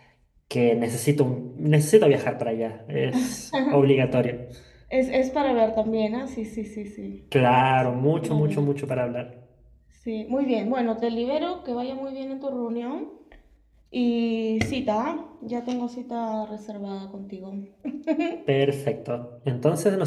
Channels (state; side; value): identical; both; correlation 1.00